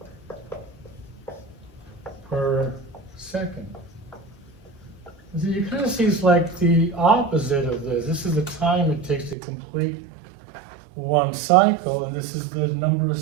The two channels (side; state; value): left; drops out; at 9.3 s